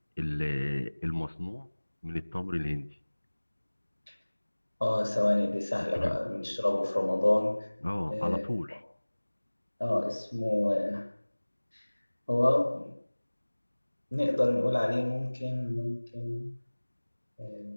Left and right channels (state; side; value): inverted; both; correlation -1.00